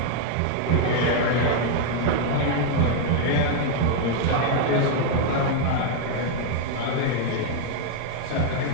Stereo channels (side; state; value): both; different; correlation 0.00